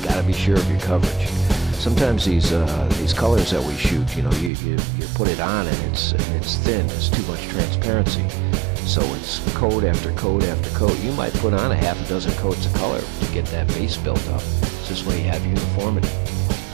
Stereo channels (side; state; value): left; drops out; at 4.5 s